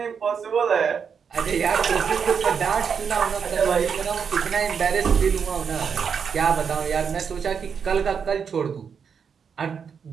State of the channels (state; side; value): quieter; left; 6.6 dB